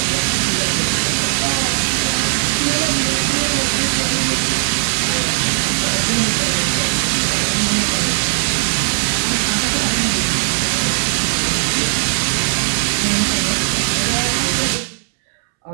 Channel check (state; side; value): silent; left; 68 dB below the other